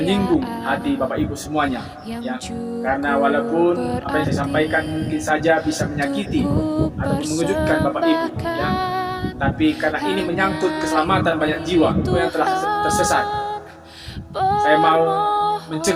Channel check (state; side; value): identical; both; correlation 1.00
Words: hati Bapak Ibu semuanya, ya. Karena walaupun apa yang saya sampaikan mungkin saja bisa menyakiti atau mengejutkan Bapak Ibu, ya. Tapi karena ini menyangkut keselamatan banyak jiwa yang telah tersesat, saya mau